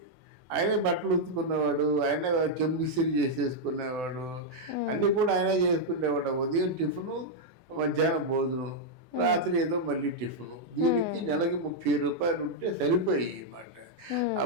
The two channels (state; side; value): late; left; 24 ms